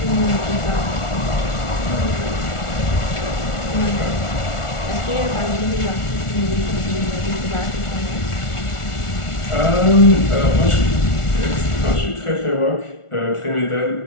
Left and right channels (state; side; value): late; right; 1.4 ms